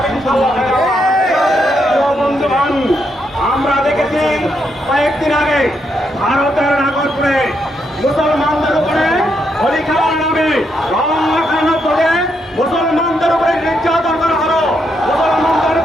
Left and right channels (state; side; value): normal; both; correlation 0.79